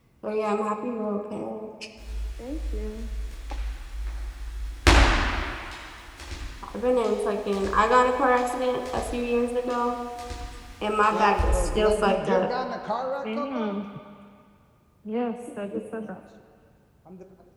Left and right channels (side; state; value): both; identical; correlation 1.00